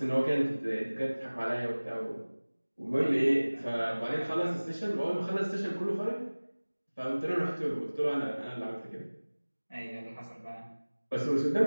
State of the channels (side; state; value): both; inverted; correlation -1.00